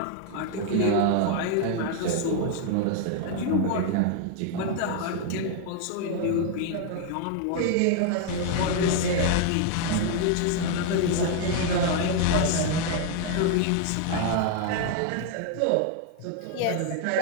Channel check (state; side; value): different; both; correlation 0.00